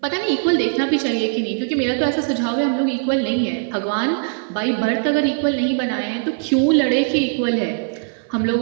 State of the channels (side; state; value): left; silent; 62 dB below the other